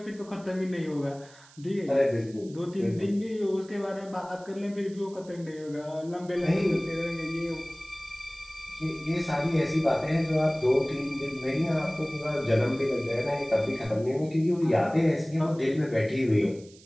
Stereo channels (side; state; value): right; noise; hiss, 24 dB below the sound